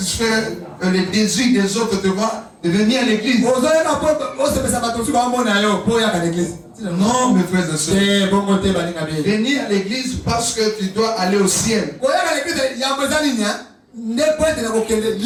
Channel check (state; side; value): identical; both; correlation 1.00